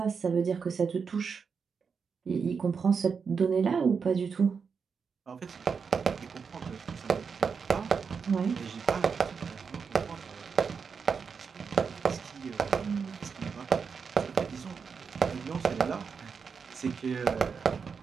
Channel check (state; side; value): quieter; left; 5.8 dB